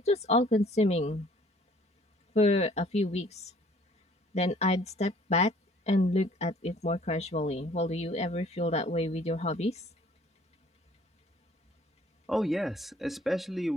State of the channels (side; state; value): both; normal; correlation 0.56